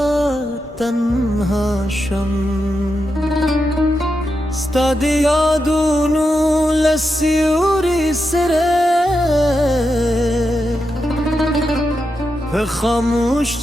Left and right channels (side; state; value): both; normal; correlation 0.87